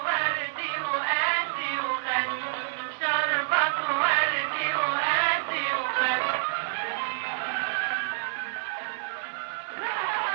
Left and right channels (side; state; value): left; silent; digital silence